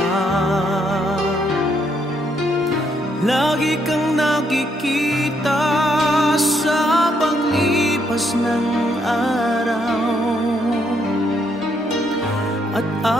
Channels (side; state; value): both; normal; correlation 0.74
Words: Lagi kang nakikita sa paglipas ng araw, at